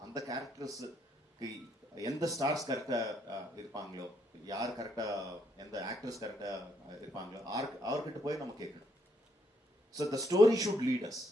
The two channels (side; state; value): both; normal; correlation 0.73